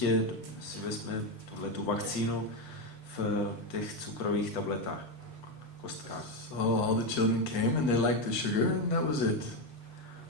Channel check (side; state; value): right; late; 7.3 ms